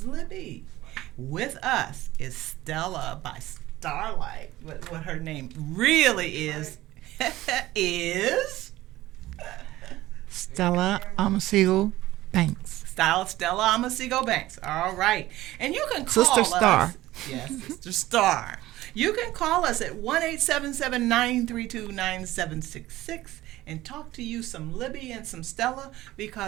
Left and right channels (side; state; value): left; quieter; 16.4 dB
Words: Libby. With us is Stella by Starlight. What her name really is is Stella Amasigo Banks. Stella Amasigo Banks. All right. And you can call Sister Star. Yes, Sister Star. You can call us at 1-877-932-9766 and talk to you some Libby and some Stella